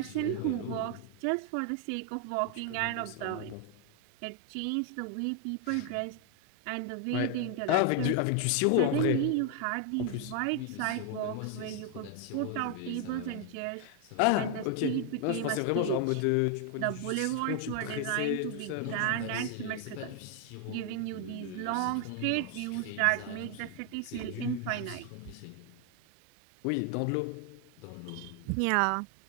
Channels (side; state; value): both; different; correlation 0.00